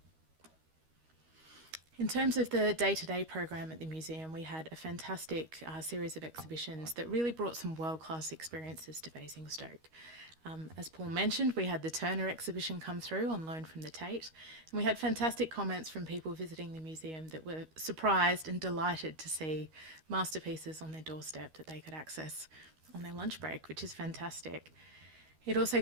In terms of the day-to-day program at the museum, we had a fantastic series of exhibitions that really brought some world-class experiences to Basingstoke. As Paul mentioned, we had the Turner exhibition come through on loan from the Tate, and we had fantastic comments from people visiting the museum that were surprised and delighted to see masterpieces on their doorstep that they could access on their lunch break, which is fantastic. It also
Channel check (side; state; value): left; late; 13 ms